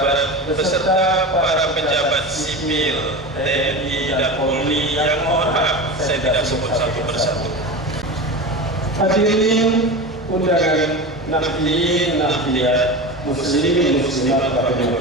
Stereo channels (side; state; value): both; normal; correlation 0.27